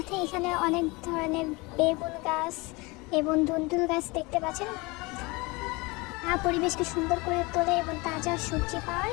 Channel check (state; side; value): quieter; right; 25.1 dB